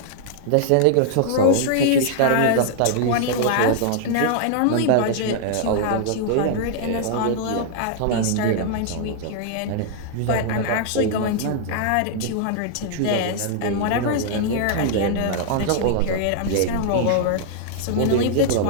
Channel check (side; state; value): both; different; correlation -0.01